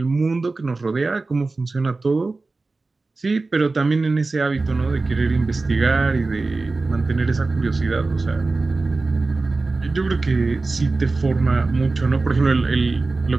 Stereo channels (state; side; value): quieter; left; 3.6 dB